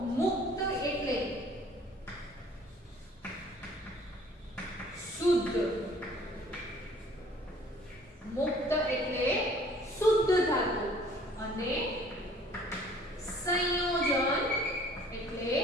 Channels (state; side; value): normal; both; correlation 0.55